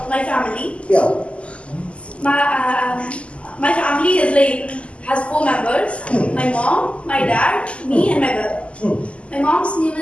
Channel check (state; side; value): late; right; 0.057 ms